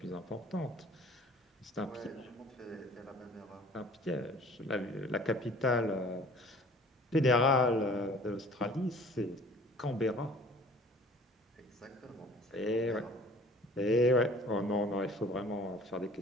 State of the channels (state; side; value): normal; both; correlation 0.50